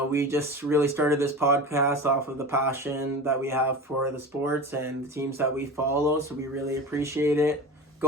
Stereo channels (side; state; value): both; normal; correlation 0.31